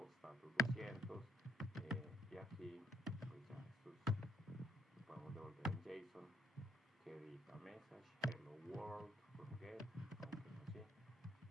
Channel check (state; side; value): normal; both; correlation 0.68